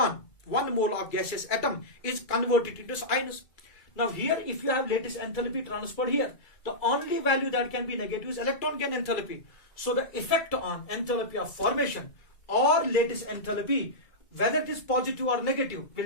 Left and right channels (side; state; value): right; late; 2.2 ms